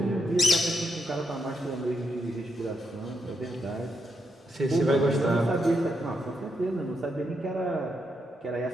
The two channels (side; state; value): both; normal; correlation 0.81